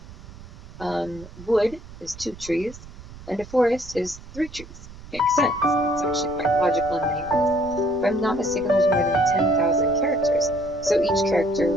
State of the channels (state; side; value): noise; right; rumble, 17 dB below the sound